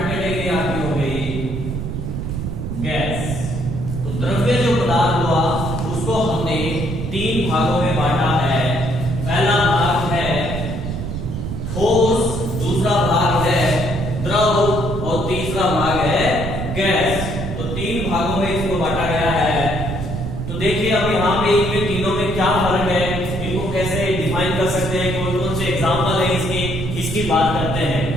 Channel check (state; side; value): noise; right; rumble, 5 dB below the sound